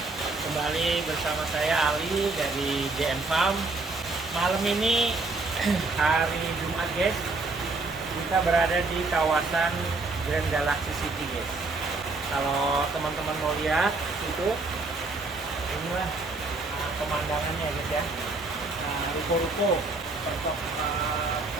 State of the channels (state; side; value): quieter; left; 3.4 dB